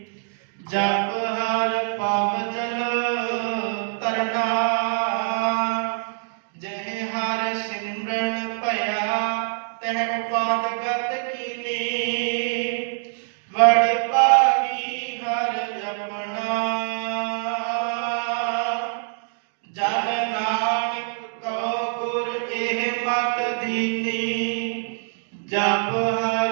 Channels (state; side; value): silent; left; 56 dB below the other